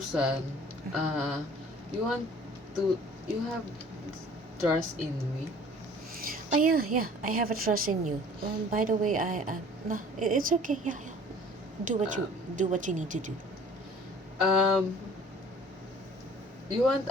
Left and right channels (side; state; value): both; normal; correlation 0.50